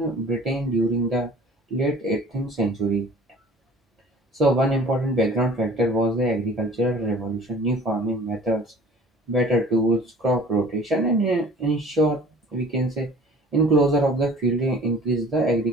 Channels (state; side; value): normal; both; correlation 0.47